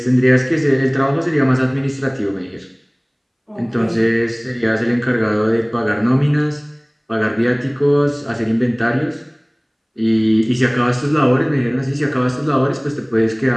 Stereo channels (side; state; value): both; identical; correlation 1.00